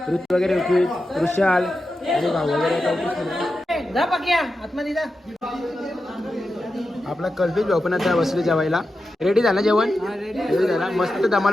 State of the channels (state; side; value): normal; both; correlation 0.90